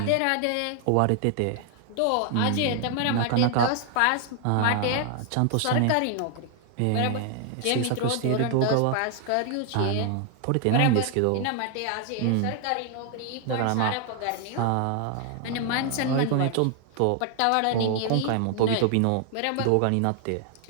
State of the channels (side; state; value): both; different; correlation 0.00